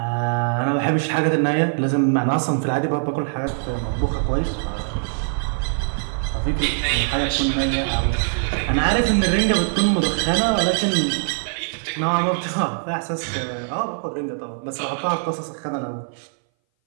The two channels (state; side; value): silent; left; 59 dB below the other